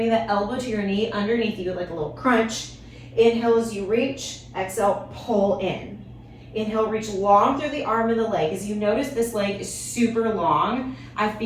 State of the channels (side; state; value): both; identical; correlation 1.00